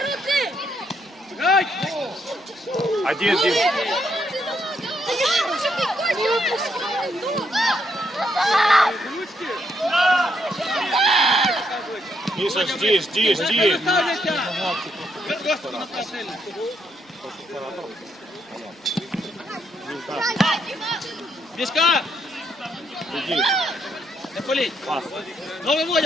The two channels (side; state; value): both; normal; correlation 0.75